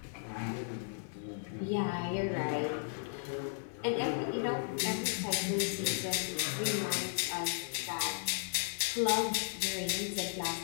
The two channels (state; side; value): silent; right; 54 dB below the other